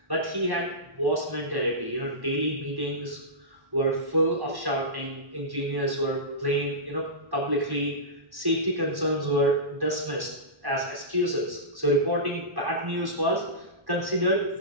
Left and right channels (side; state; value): left; late; 1.1 ms